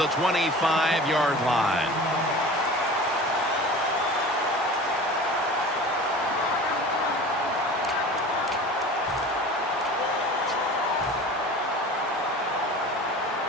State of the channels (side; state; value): both; normal; correlation 0.39